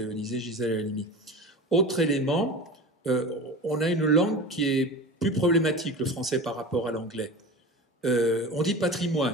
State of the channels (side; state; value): both; normal; correlation 0.32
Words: Gisèle Halimi. Autre élément, on a une langue qui est plus problématique, le français par rapport à l'anglais. On dit